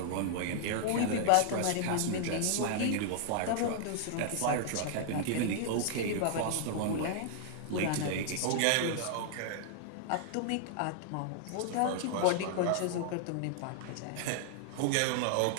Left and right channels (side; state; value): both; different; correlation -0.01